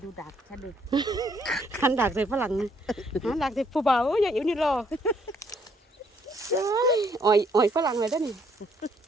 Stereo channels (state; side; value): normal; both; correlation 0.68